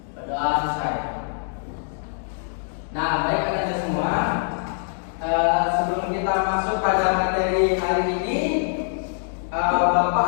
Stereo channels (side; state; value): right; silent; digital silence